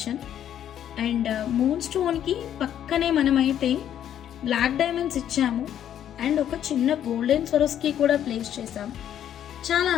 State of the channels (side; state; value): right; quieter; 10.3 dB